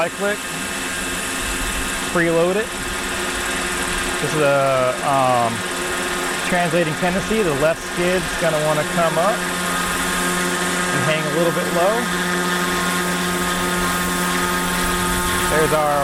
Preload it. This is a translating tendency. The left skid's going to want to come up and hang a little bit low. There's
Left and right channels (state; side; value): identical; both; correlation 1.00